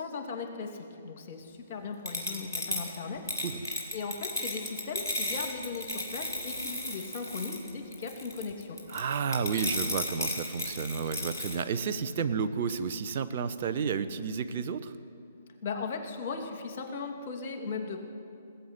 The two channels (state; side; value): inverted; both; correlation -0.51